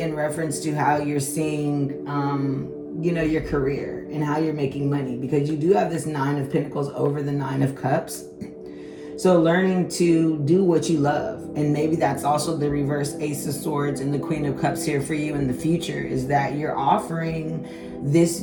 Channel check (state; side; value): identical; both; correlation 1.00